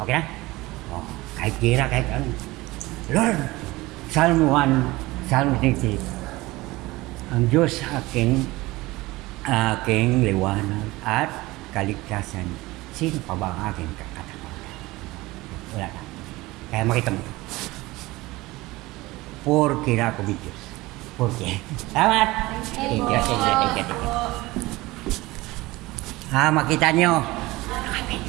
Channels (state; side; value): quieter; left; 20.3 dB